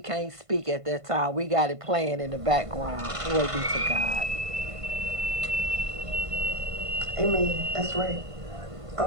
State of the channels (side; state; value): left; late; 1.5 ms